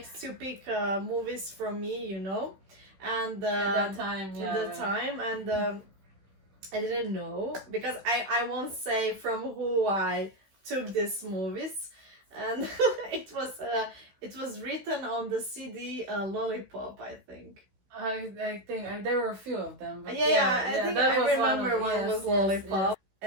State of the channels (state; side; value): late; left; 16 ms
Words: to pick movies from me, you know, and At that time, yeah. at the time, and I didn't know, because I won't say from who I took these movies, and it was written on the CD Lollipop, I think. I think there were a few of them. But I think that I was remember one was Lollipop,